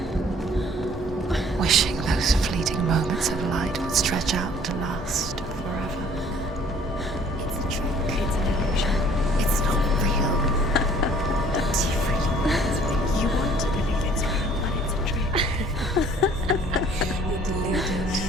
wishing those fleeting moments of light would stretch out to last forever. It's a trick. It's an illusion. It's not real. Do you really want it to be? You want to believe it's real, but it's a trick. You're deluded.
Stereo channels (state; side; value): normal; both; correlation 0.55